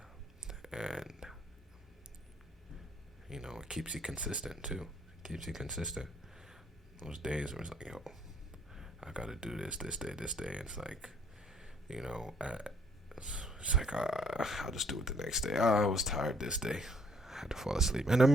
and it keeps you consistent too. It keeps you consistent. Those days where it's like, yo, I gotta do this day, this day. It's like, it's like I'll just do it the next day. I was tired this day. I had to fall asleep. And I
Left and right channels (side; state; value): both; normal; correlation 0.64